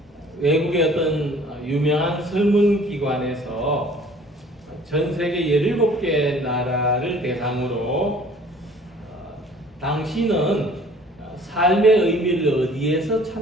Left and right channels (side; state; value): both; normal; correlation 0.52